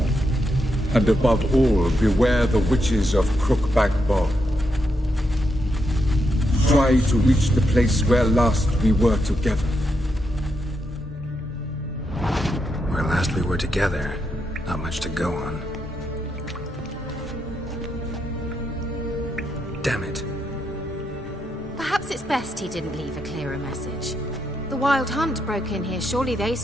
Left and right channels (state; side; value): normal; both; correlation 0.82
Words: And above all, beware the witches of Crookback Bog. Try to reach the place where last we were together. Where last we were together, not much to go on. Damn it. Perhaps it's best he didn't leave a clearer message. The Wild Hunt broke in here. Surely they